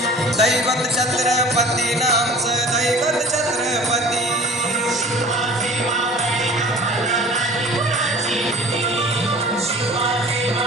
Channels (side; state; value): both; normal; correlation 0.44